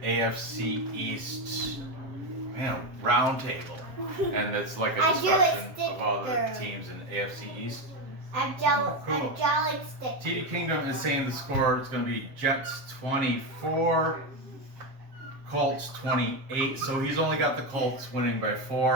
AFC East roundtable, and it's like a discussion of all the teams in the AFC East. I'm Cool. drawing stick. TD Kingdom is saying the score is going to be Jets 24, Colts 28. So he's only got the Colts winning by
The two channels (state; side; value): late; left; 7.6 ms